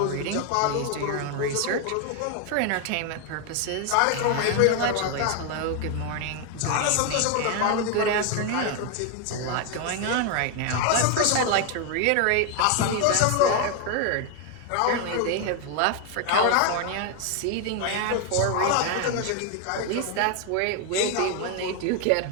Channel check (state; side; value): different; both; correlation 0.01